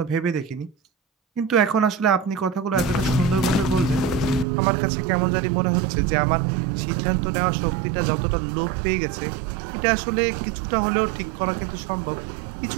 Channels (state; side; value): drops out; left; at 4.5 s